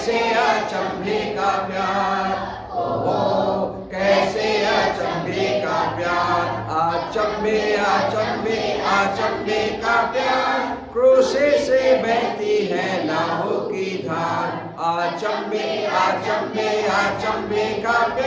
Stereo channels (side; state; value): both; identical; correlation 1.00